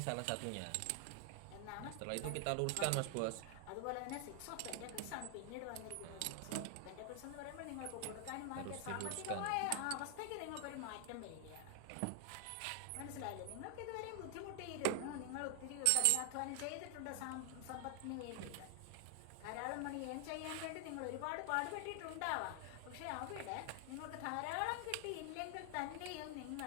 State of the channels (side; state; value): both; different; correlation 0.00